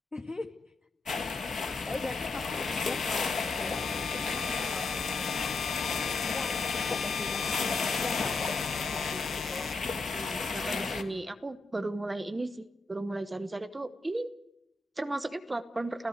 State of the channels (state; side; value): quieter; right; 3.3 dB